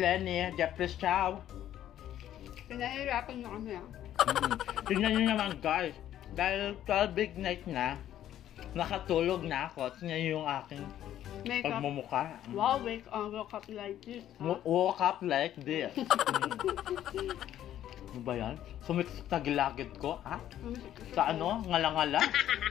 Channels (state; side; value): quieter; right; 11.7 dB